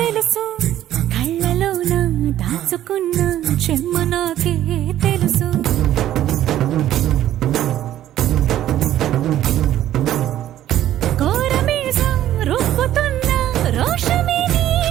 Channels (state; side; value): quieter; left; 12.5 dB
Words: కళ్ళలోన దాచుకున్న చెమ్మ నాకే తెలుసు. కోరమీసం రుబ్బుతున్న రోషమే